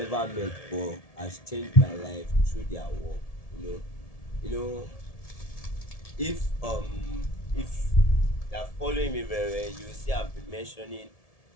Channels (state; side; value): late; right; 1.7 ms